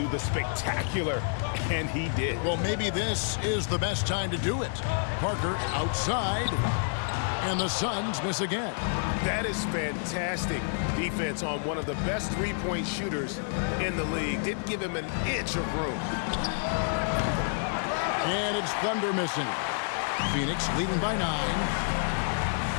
the spectacular, and he did. Well, maybe this is the best time to do it. Parker outside, and the Suns miss again. That is fantastic defense on one of the best three-point shooters in the league. Didn't give him an inch of room. And it's Thunder missing. Phoenix leading by 9.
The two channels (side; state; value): right; silent; digital silence